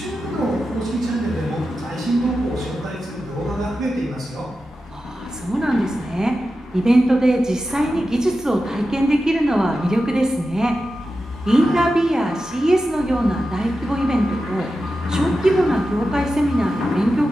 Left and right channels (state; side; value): normal; both; correlation 0.92